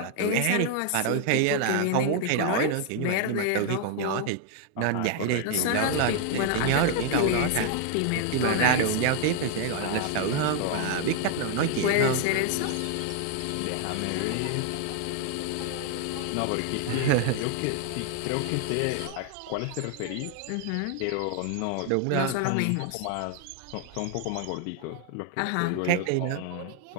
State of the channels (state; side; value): different; both; correlation 0.00